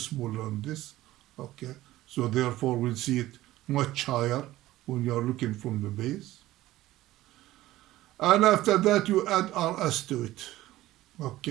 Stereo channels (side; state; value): left; quieter; 16.0 dB